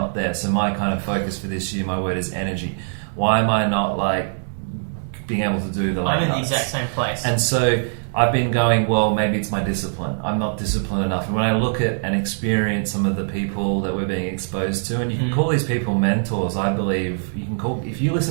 there? So my kind of focus for this year, my word is energy. Why am I not like being able to do the? I'm in the exact same place, and so I've been going, well, maybe it's my discipline. I'm not disciplined enough. And when I look at and experience some of the people that we're being exposed to, and you can call these people mentors, I believe you can call, if you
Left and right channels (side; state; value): left; silent; digital silence